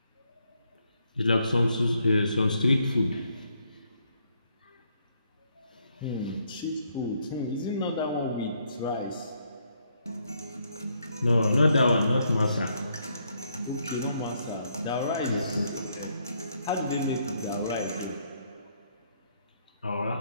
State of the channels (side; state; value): both; inverted; correlation -0.73